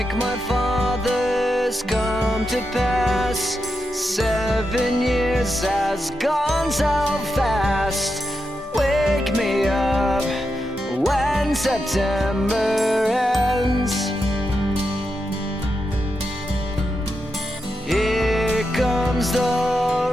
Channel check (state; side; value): normal; both; correlation 0.87